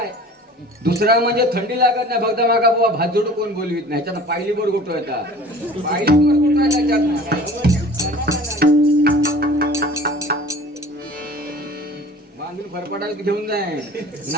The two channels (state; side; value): normal; both; correlation 0.44